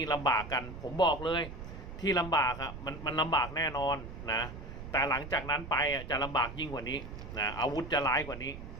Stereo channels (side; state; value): right; noise; rumble, 11 dB below the sound